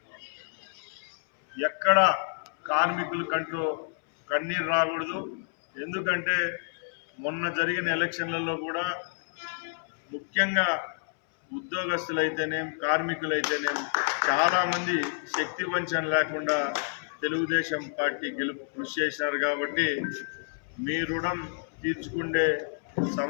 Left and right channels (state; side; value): silent; right; 59 dB below the other